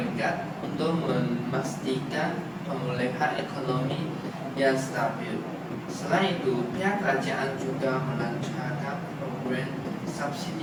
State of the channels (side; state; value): both; identical; correlation 1.00